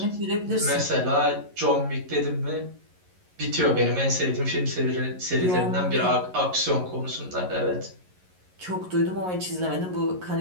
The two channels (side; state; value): left; late; 11 ms